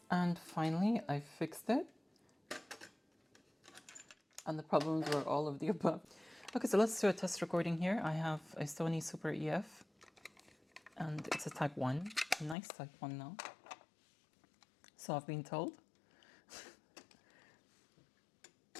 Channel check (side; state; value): right; drops out; at 12.6 s